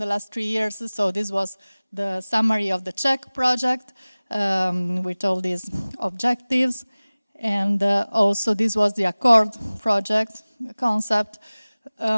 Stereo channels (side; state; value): both; inverted; correlation -0.99